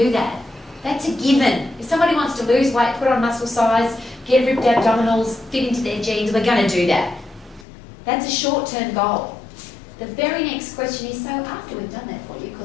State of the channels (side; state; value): right; drops out; at 7.7 s